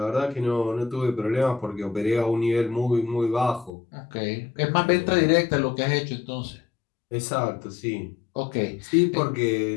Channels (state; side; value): drops out; right; at 3.7 s